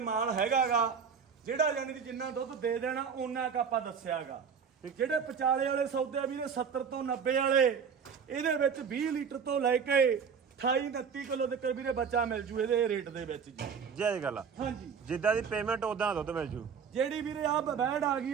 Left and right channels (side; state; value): left; quieter; 6.6 dB